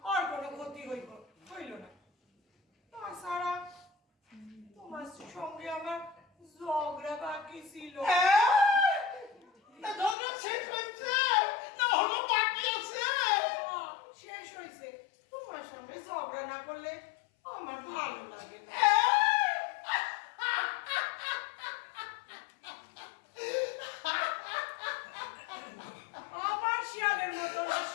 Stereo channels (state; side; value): drops out; right; at 10.2 s